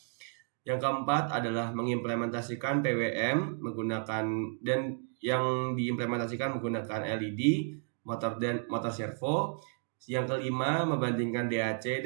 Yang keempat adalah mengimplementasikan PWM menggunakan dan yang diimplementasikan menggunakan LED, motor servo. Yang kelima, membandingkan DAC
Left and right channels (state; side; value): silent; left; 56 dB below the other